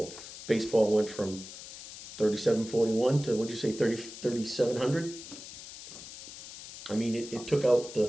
Baseball went from 3741 to, what'd you say, 3700? I mean, it took out the, Oh,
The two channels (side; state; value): left; noise; hiss, 13 dB below the sound